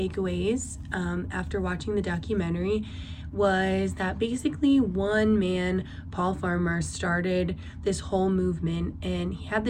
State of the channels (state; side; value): identical; both; correlation 1.00